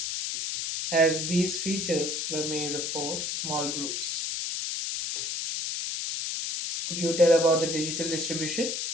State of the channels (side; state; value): left; noise; hiss, 2 dB below the sound